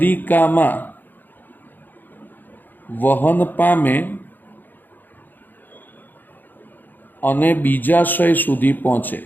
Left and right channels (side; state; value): right; late; 0.088 ms